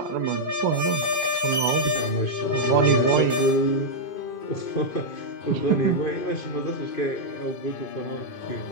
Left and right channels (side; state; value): right; late; 2.5 ms